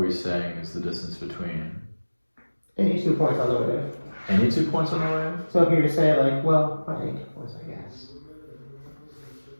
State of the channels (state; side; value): inverted; both; correlation -1.00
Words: saying is the distance between? Any 2 points on the wave. Any 2 points on the wave? So if you were to say like, well, not any 2 points, I guess.